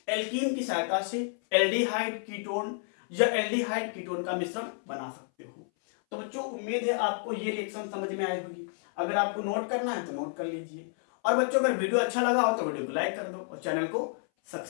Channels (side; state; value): right; silent; 58 dB below the other